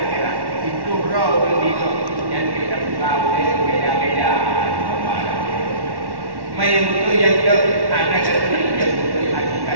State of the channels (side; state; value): left; late; 1.1 ms